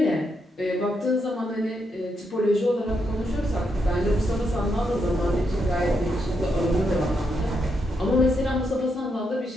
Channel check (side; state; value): both; normal; correlation 0.81